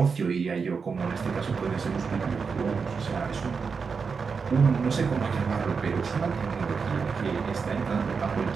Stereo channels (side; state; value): left; quieter; 5.4 dB